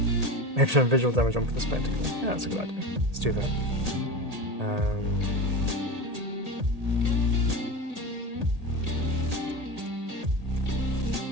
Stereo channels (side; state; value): left; late; 1.8 ms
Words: Maybe some visual damage on for the spectacle. Yeah, that's a good idea. Let's do that. There